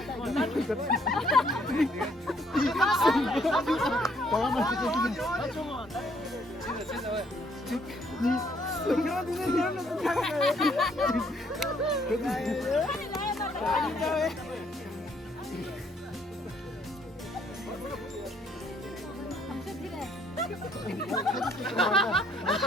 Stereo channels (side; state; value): both; normal; correlation 0.66